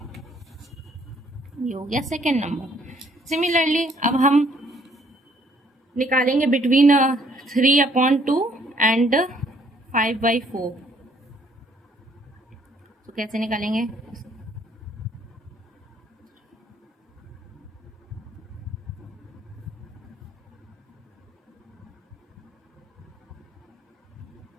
ये हो गया सेकेंड नंबर। सिमिलरली अब हम निकालेंगे बिटवीन 3/2 एंड 5/4। तो कैसे निकालेंगे?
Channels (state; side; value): normal; both; correlation 0.64